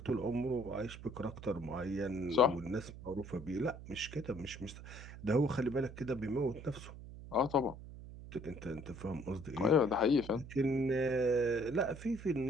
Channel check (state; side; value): noise; right; hum, 13 dB below the sound